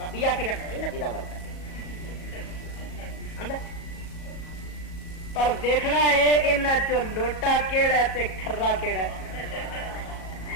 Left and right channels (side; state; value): right; late; 37 ms